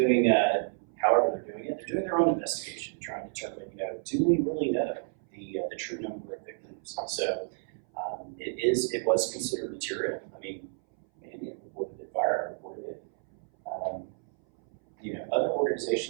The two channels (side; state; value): left; silent; 58 dB below the other